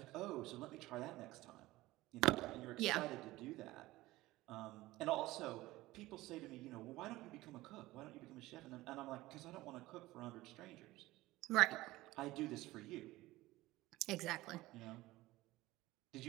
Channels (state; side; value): quieter; left; 18.2 dB